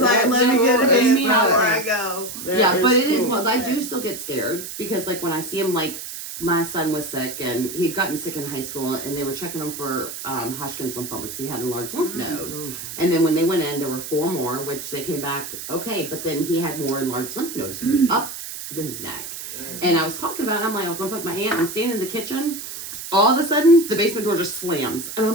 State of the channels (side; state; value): right; noise; hiss, 9 dB below the sound